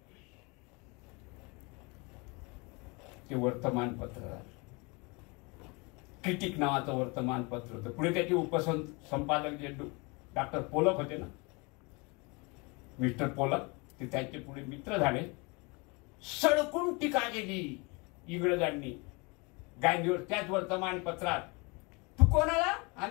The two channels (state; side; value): quieter; right; 28.5 dB